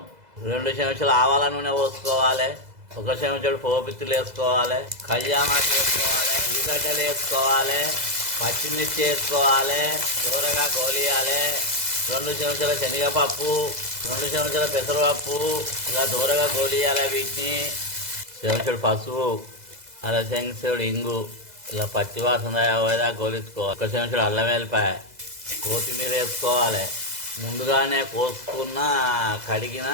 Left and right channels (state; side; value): late; left; 2.0 ms